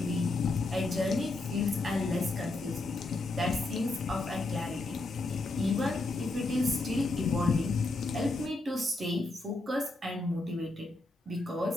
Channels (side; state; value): right; quieter; 3.0 dB